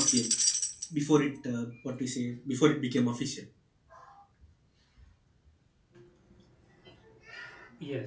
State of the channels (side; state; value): both; identical; correlation 1.00